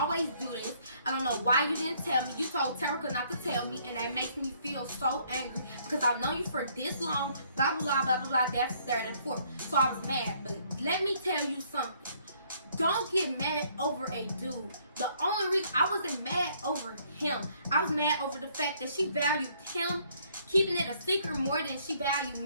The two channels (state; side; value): inverted; both; correlation -0.65